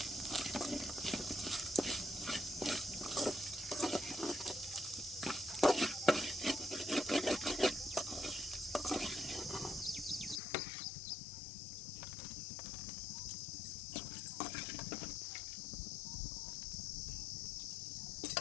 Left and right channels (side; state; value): right; drops out; at 10.4 s